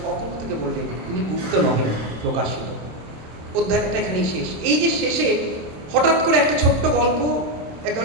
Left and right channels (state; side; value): late; left; 27 ms